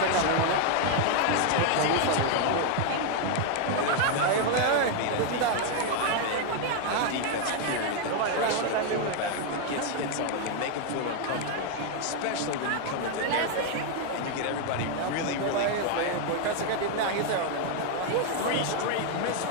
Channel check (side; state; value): both; different; correlation 0.01